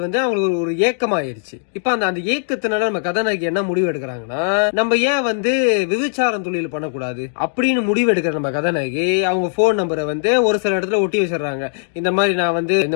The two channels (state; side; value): silent; right; digital silence